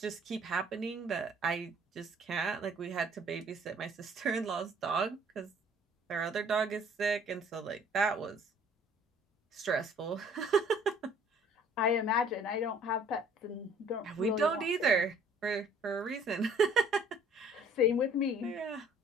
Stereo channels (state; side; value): normal; both; correlation 0.56